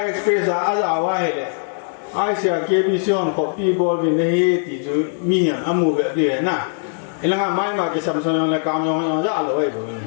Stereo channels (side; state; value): right; silent; digital silence